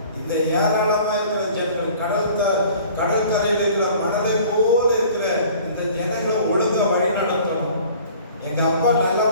இந்த ஏராளமா இருக்கிற ஜனங்கள், கடற்கரையில் இருக்கிற மனதை போல இருக்கிற இந்த ஜனங்களை ஒழுங்கா வழி நடத்தணும். எங்க அப்பா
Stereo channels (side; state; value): both; inverted; correlation -0.49